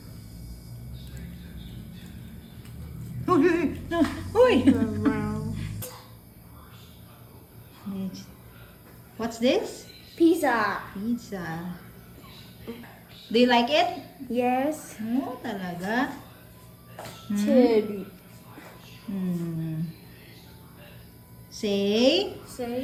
Uy, uy, no, uy. What's this? Pizza. Pizza. Do you like it? Yes. Oh, talaga? Cherry. Say,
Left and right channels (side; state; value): both; identical; correlation 1.00